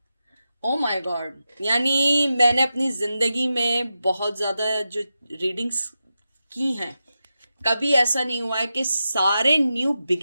oh my god, यानी मैंने अपनी जिंदगी में बहुत ज्यादा जो रीडिंग्स की हैं, कभी ऐसा नहीं हुआ है कि सारे न्यू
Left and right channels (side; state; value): both; inverted; correlation -0.90